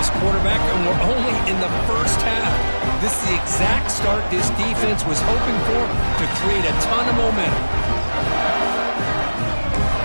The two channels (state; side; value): inverted; both; correlation -1.00